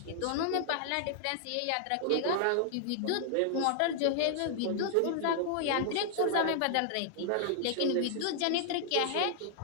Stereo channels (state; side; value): different; both; correlation -0.01